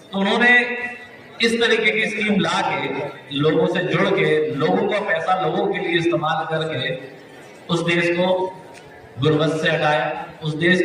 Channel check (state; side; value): identical; both; correlation 1.00